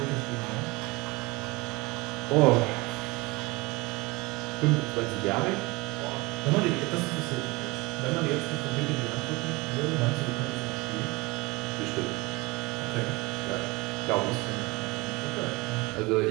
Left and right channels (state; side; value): quieter; left; 24.0 dB